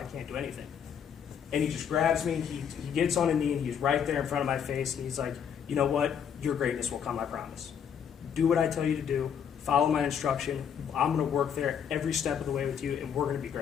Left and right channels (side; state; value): right; quieter; 8.0 dB